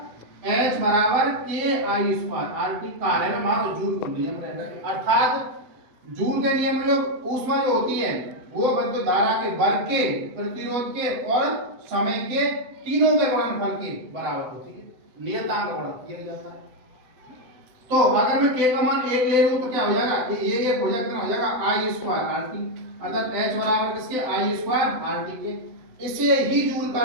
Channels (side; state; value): left; late; 7.9 ms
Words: H बराबर के I स्क्वायर R T। कार्य में हमारा जूल का नियम रहेगा। अर्थात जूल के नियम में जो ऊष्मा जो होती है वो विद्युत धारा के वर्ग के, प्रतिरोध के और समय के तीनों के गुणनफल के बराबर होती है। नियतांक का गुणा किया जाता है। तो अगर मैं k का मान 1 ले लूं तो क्या हो जाएगा? ये 1 हो जाएगा, कितना हो जाएगा? I square R T। अर्थात H बराबर किसके? I स्क्वायर R T के। इसे ही जूल का